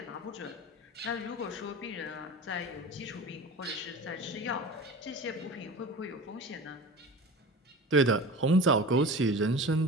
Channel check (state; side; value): normal; both; correlation 0.35